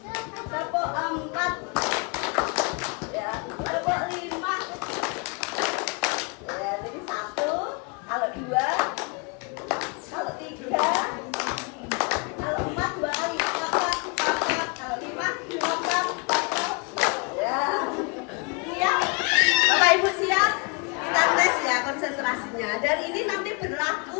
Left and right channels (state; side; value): quieter; right; 33.5 dB